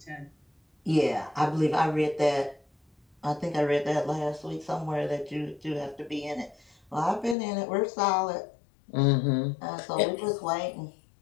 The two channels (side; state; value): right; drops out; at 7.4 s